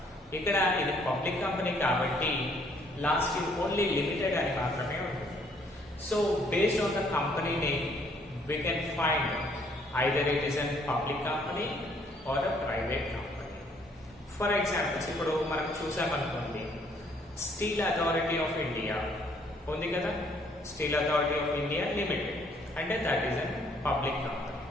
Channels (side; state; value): both; normal; correlation 0.65